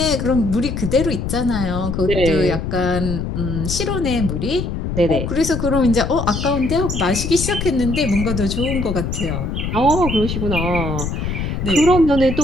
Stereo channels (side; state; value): left; noise; rumble, 3 dB below the sound